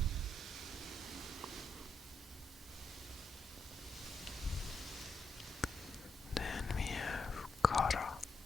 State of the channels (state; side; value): normal; both; correlation 0.83